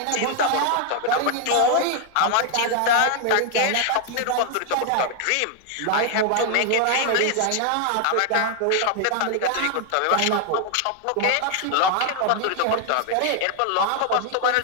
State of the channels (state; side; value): different; both; correlation 0.00